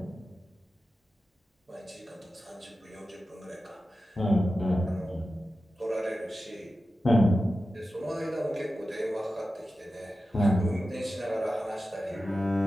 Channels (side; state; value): both; normal; correlation 0.93